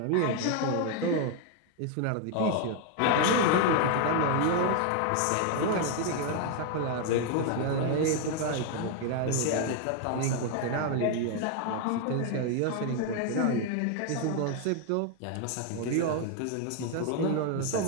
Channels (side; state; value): both; different; correlation 0.01